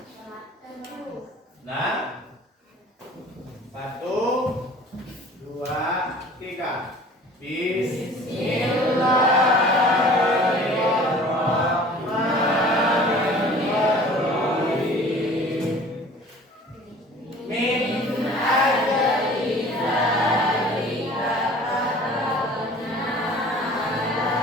Bismillahirrahmanirrahim. Min ajli dzalika katabna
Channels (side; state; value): both; normal; correlation 0.46